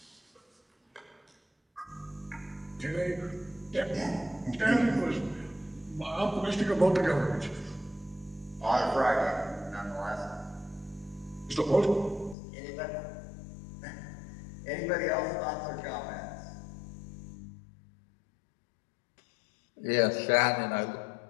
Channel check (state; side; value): drops out; right; at 12.4 s